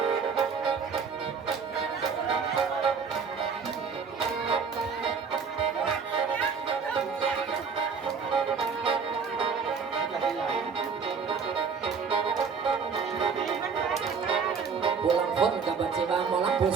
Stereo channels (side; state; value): left; quieter; 5.7 dB